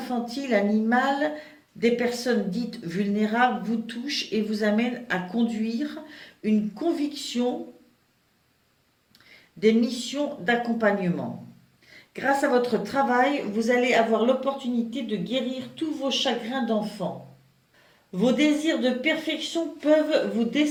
animales, des personnes dites vulnérables vous touchent et vous amènent à conduire une conviction des missions d'accompagnement. Grâce à votre travail, vous allez avoir l'opportunité de guérir tous vos chagrins d'enfant. Vos désirs de perfection peuvent vous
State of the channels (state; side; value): identical; both; correlation 1.00